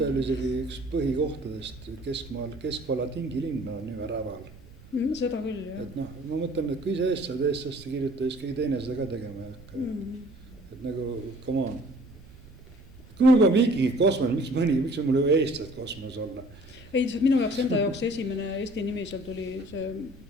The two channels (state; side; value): noise; right; rumble, 21 dB below the sound